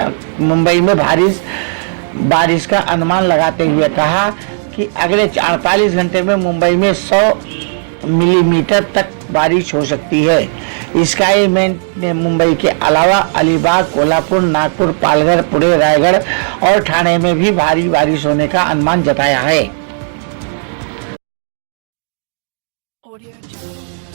मुंबई में बारिश का अनुमान लगाते हुए कहा कि अगले 48 घंटे में मुंबई में 100 मिलीमीटर तक बारिश हो सकती है। स्काईमेट ने मुंबई के अलावा अलीबाग, कोल्हापुर, नागपुर, पालघर, पुणे, रायगढ़ और ठाणे में भी भारी बारिश होने का अनुमान जताया है।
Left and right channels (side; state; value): left; silent; digital silence